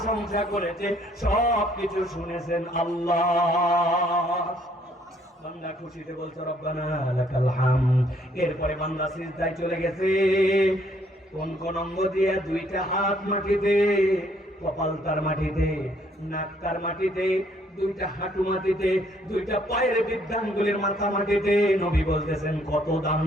করেছে সব কিছু শুনেছেন আল্লাহ। বান্দা খুশিতে বলছে রব্বানা লাকাল হামদ। এরপরে বান্দা সিজদায় চলে গেছে। কোন কোন অঙ্গ দিয়ে? দুইটা হাত মাটিতে, কপাল তার মাটিতে, নাক তার মাটিতে, দুইটা হাঁটু মাটিতে, দুইটা পায়ের বৃদ্ধাঙ্গুলির মাথা মাটিতে। নবী বলতেছেন কত দাম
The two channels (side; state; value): both; normal; correlation 0.66